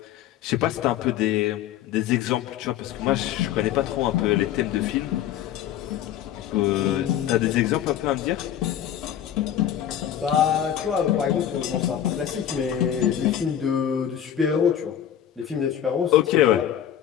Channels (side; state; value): right; quieter; 10.4 dB